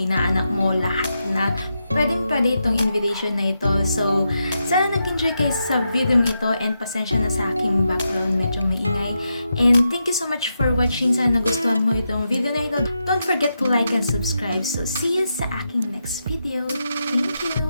mo, lahat na. Pwede itong invitation na ito. So, sana nag-enjoy kayo sa video ito and pasensya na sa aking background. Medyo maingay. And thank you so much for watching. Sana nagustuhan mo itong video na ito. Don't forget to like and subscribe. So, see you sa aking next video. Thank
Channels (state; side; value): inverted; both; correlation -0.85